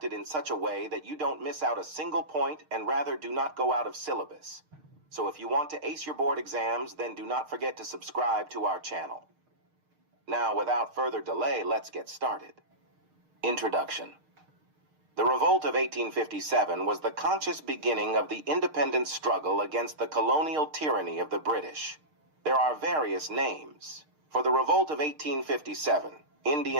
in such a way that you don't miss out a single point and rather do not go out of syllabus. So if you want to ace your board exams, then do not forget to subscribe to our channel. Now, without further delay, let's get started. Introduction. The Revolt of 1857 was the conscious beginning of the independence struggle against the colonial tyranny of the British. There are various names. For the Revolt of 1857,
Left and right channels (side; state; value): left; late; 6.5 ms